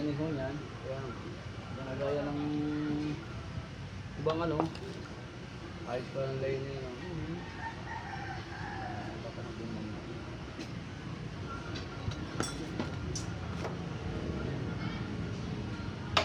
ho niyan. Kaya, ginagaya ng ibang ano. Ayos pa ng lining. No?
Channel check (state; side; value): identical; both; correlation 1.00